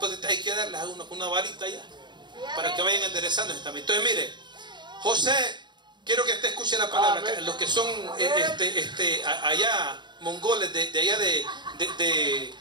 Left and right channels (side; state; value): left; late; 0.22 ms